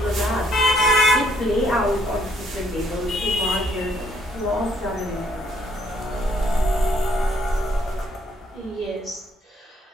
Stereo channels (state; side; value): normal; both; correlation 0.68